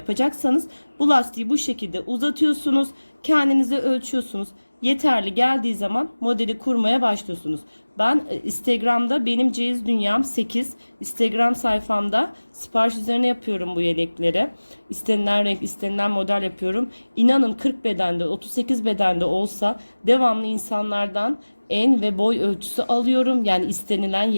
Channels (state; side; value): inverted; both; correlation -1.00